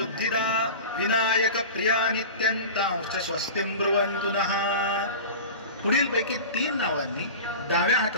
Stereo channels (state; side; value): inverted; both; correlation -0.33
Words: विनायक प्रिया नित्यंतांश्च स्वस्तिं ब्रुवन्तु नः। पुढील पैकी 3 नावांनी डाव्या